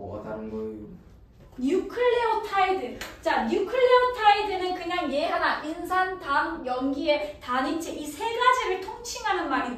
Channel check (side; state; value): both; identical; correlation 1.00